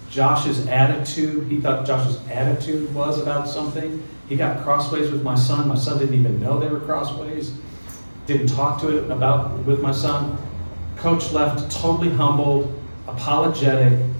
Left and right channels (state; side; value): inverted; both; correlation -1.00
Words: Josh's attitude, he thought Josh's attitude was about something. He got crossways with my son. My son didn't even know they were crossways. Didn't talk to it with my son. Coach left totally humbled, apologetic.